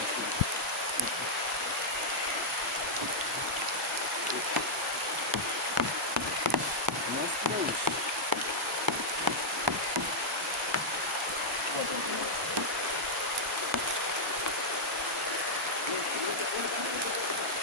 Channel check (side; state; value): both; normal; correlation -0.06